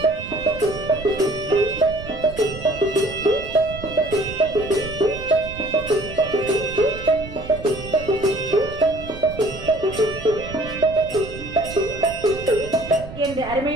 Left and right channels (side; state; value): right; noise; rumble, 13 dB below the sound